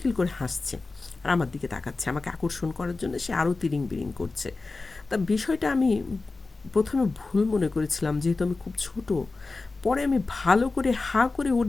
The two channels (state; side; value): quieter; right; 3.7 dB